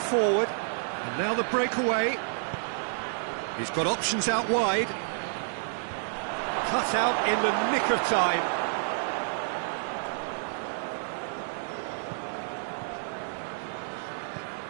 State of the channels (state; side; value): silent; left; digital silence